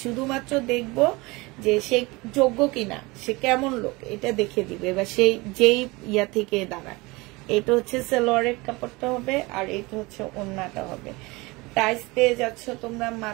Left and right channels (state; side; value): quieter; left; 23.7 dB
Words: শুধুমাত্র দেখবো যে সে যোগ্য কিনা, সে কেমন লোক, এটা দেখে দিবে, বা সেই যেই ইয়া থেকে দাঁড়ায়। এটা হচ্ছে সালোয়ারের কাপড়টা হবে, আর এটা হচ্ছে ওড়নাটা হবে। প্রাইস পেয়ে যাচ্ছ তোমরা